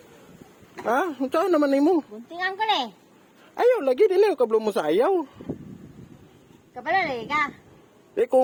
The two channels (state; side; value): identical; both; correlation 1.00